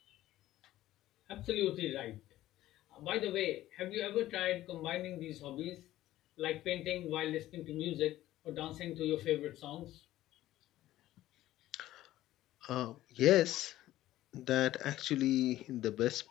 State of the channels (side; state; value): right; quieter; 14.8 dB